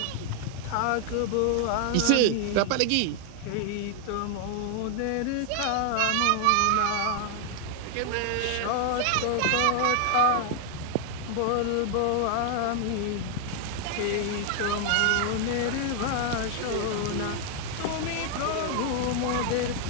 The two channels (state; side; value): different; both; correlation 0.00